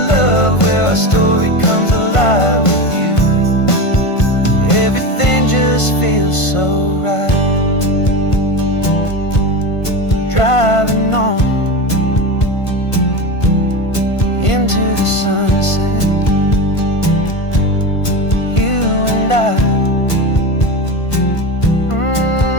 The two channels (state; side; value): late; right; 1.5 ms